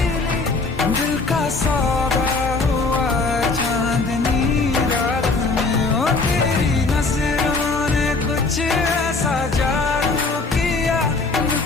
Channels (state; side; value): quieter; right; 3.8 dB